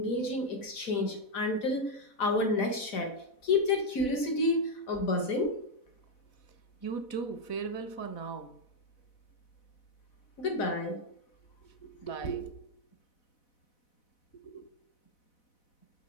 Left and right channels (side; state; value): right; late; 4.0 ms